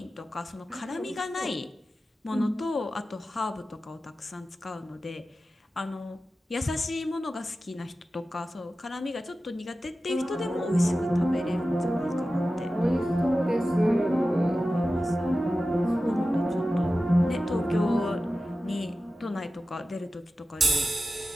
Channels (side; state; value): both; normal; correlation 0.94